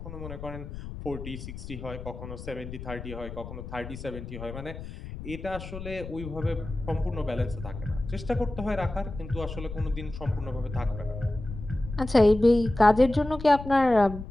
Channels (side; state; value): left; noise; rumble, 10 dB below the sound